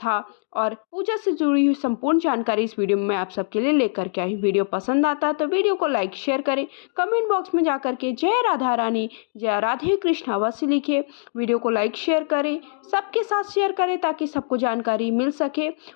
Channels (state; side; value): silent; right; digital silence